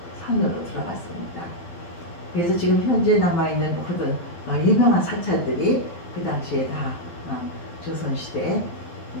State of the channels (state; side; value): late; right; 12 ms